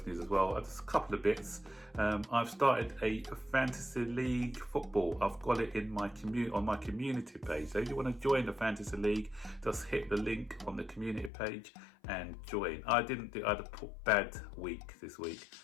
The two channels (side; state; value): right; drops out; at 11.3 s